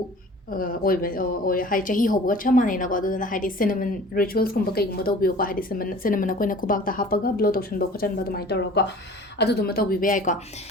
ꯑꯣꯏ ꯍꯥꯏ ꯆꯍꯤ ꯍꯧꯕꯒ ꯆꯞ ꯃꯥꯟꯅꯩꯅꯀꯣ ꯑꯗꯨꯗꯨꯅ ꯍꯥꯏꯗꯤ ꯁꯤꯅꯃꯟ ꯔꯤꯆꯨꯋꯦꯜꯁꯀꯨꯝꯕ ꯀꯩꯒꯨꯝꯕ ꯇꯧꯕꯤꯌꯨꯀꯣ ꯍꯥꯏꯗꯤ ꯁꯤꯅꯃꯟ ꯑꯩꯈꯣꯏꯅ ꯈꯨꯕꯥꯛꯇ ꯍꯥꯞꯄꯒ ꯕ꯭ꯂꯣ ꯇꯧꯁꯟꯕ ꯈꯣꯠꯆꯟꯕ ꯑꯗꯨꯃꯥꯏꯅ ꯇꯧꯔꯒꯀꯣ ꯑꯗꯨꯗꯨꯃ ꯇꯧꯕꯤꯕ ꯌꯥꯏꯀꯣ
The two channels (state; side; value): normal; both; correlation 0.45